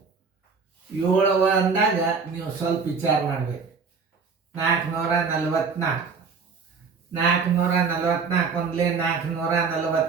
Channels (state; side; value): quieter; left; 5.2 dB